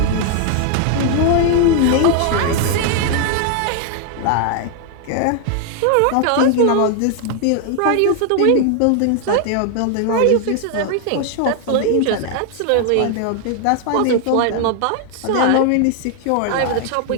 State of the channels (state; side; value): different; both; correlation 0.00